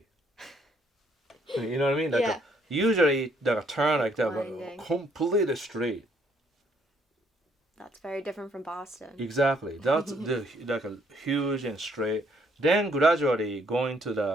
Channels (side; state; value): both; normal; correlation 0.68